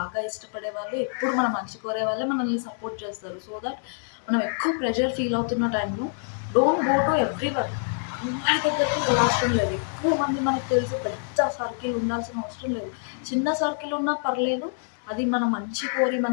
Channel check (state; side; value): silent; right; 61 dB below the other